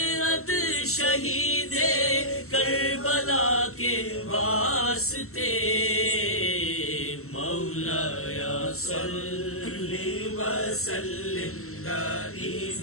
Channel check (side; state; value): right; late; 0.63 ms